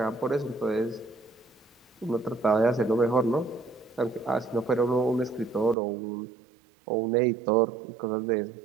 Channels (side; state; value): left; drops out; at 5.8 s